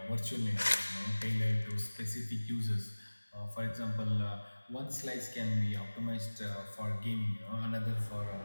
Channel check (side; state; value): both; inverted; correlation -1.00